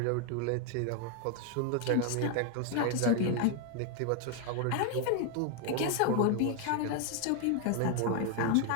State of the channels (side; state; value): both; different; correlation 0.01